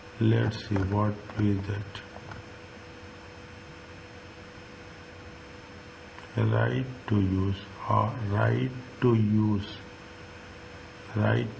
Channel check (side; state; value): both; identical; correlation 1.00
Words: Let's see what is that. Right to use. Right to use. Right